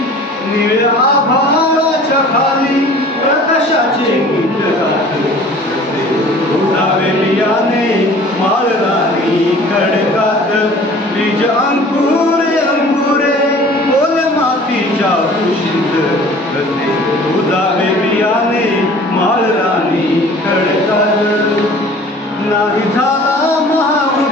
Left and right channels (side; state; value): both; normal; correlation 0.47